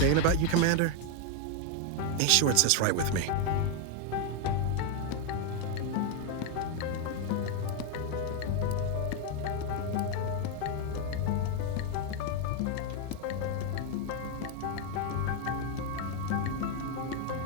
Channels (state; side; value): different; both; correlation 0.01